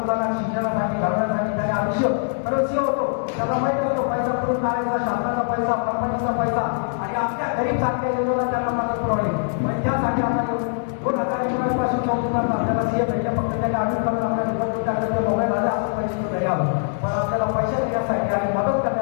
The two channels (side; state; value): right; silent; digital silence